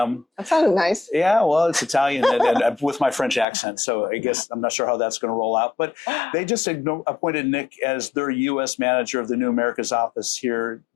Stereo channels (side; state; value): right; drops out; at 3.5 s